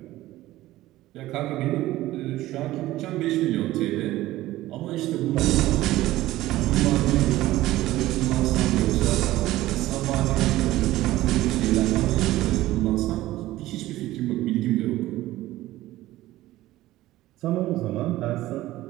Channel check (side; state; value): left; quieter; 16.2 dB